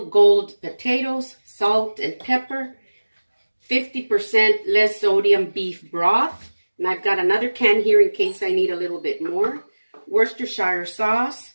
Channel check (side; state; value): both; inverted; correlation -1.00